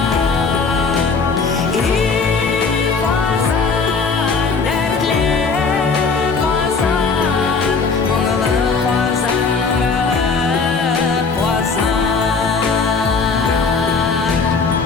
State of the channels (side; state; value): right; quieter; 4.8 dB